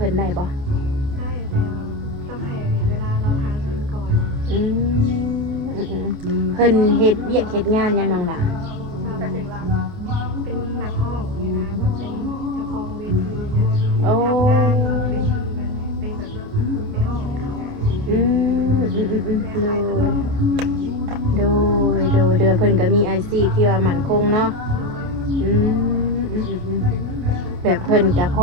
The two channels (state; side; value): late; left; 29 ms